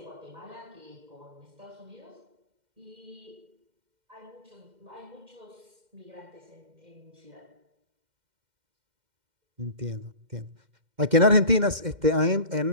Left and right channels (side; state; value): left; late; 2.1 ms